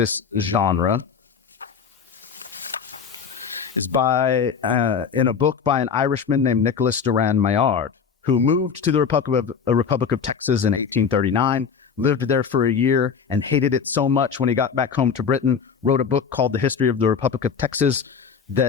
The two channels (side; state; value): right; quieter; 6.5 dB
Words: genre is in a book by an Irishman named Nicholas Duran Maillard, who moved to the Republic of Texas in 1839, lived there for a year, and hated it so much when he got back home to Britain, wrote a book called The History of the Republic of Texas